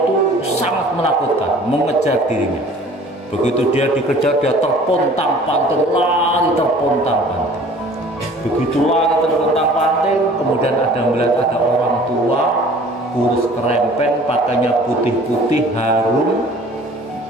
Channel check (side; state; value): both; normal; correlation 0.49